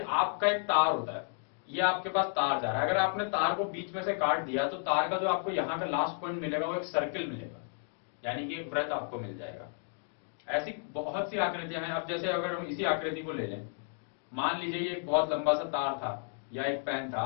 आपका एक तार होता है, ये आपके पास तार जा रहा है, अगर आपने तार को बीच में से काट दिया तो तार का जो आपको यहां का लास्ट पॉइंट मिलेगा वो एक सर्किल मिलेगा, यानी कि एक वृत्त आपको मिल जाएगा। ऐसी बहुत सी आकृतियां हैं। अब जैसे अगर हम इसी आकृति को ले लें, मान लीजिए ये एक बहुत लंबा सा तार था या एक पेन था,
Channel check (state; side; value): silent; right; digital silence